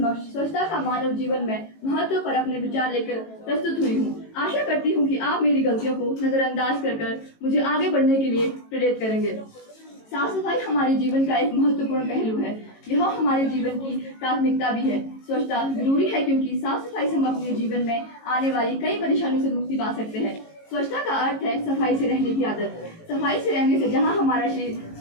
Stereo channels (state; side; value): late; right; 18 ms